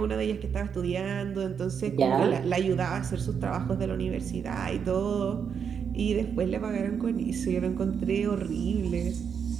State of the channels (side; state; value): left; quieter; 7.1 dB